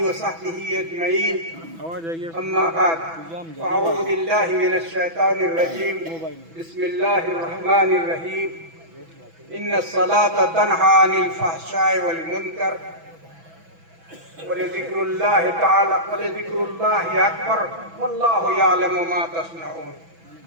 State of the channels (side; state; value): left; late; 6.1 ms